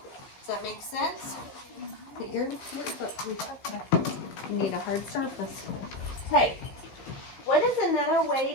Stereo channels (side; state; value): right; late; 15 ms